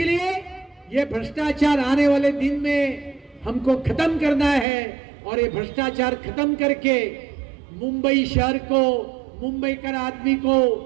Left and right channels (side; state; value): left; drops out; at 4.7 s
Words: लिए ये भ्रष्टाचार आने वाले दिन में हमको खत्म करना है और ये भ्रष्टाचार खत्म करके मुंबई शहर को, मुंबई कर आदमी को,